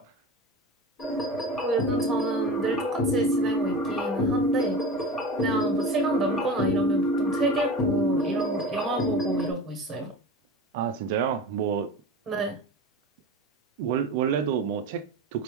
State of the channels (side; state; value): both; normal; correlation 0.32